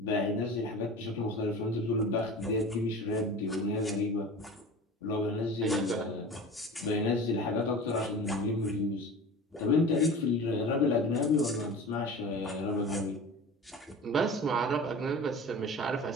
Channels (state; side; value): normal; both; correlation 0.36